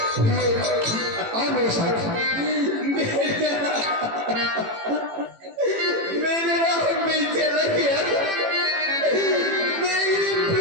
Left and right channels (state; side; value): late; left; 18 ms